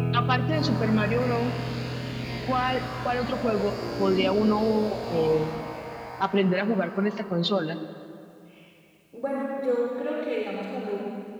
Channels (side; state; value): both; identical; correlation 1.00